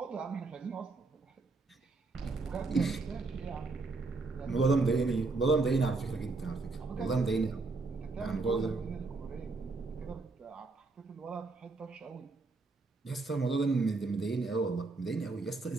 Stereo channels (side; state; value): left; quieter; 3.7 dB